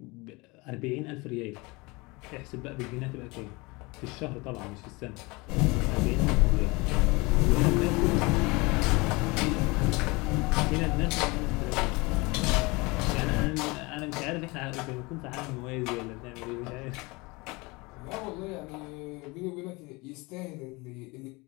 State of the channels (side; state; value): right; quieter; 25.2 dB